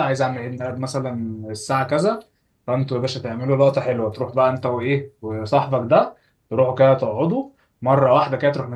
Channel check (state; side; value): identical; both; correlation 1.00